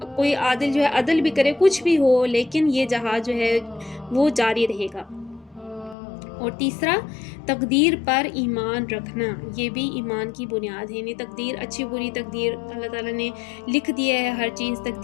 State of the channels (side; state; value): right; drops out; at 6.0 s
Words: کوئی عادل جو ہے عدل بھی کرے، کچھ بھی ہو، لیکن یہ جہاد جو ہے وہ جاری رہے گا۔ اور تیسرا، تقدیر پر ایمان رکھنا، یہ بھی ایمان کی بنیاد ہے، یعنی تقدیر، اچھی بری تقدیر اللہ تعالیٰ نے لکھ دیا ہے، ہر چیز